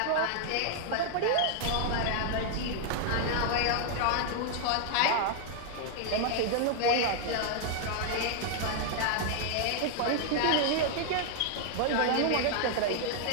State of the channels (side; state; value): both; different; correlation 0.00